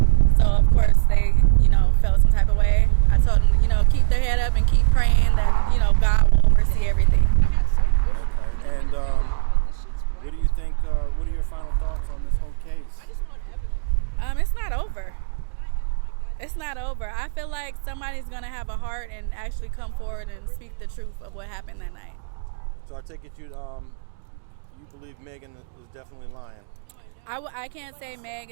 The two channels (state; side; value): silent; left; digital silence